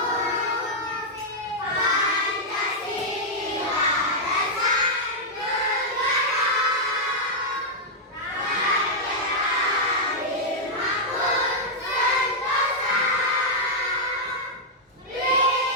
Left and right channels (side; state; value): both; normal; correlation -0.05